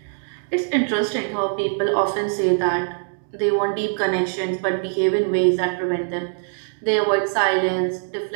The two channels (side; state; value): left; silent; digital silence